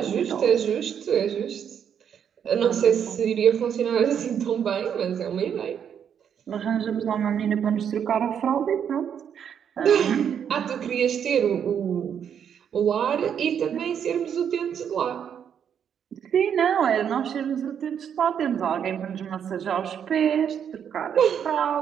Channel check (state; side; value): quieter; left; 8.3 dB